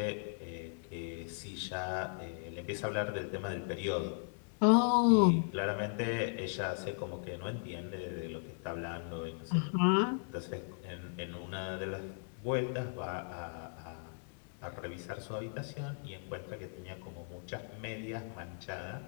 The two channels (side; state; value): right; silent; digital silence